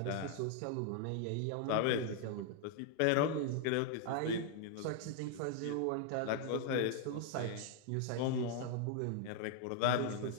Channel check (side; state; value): both; different; correlation 0.00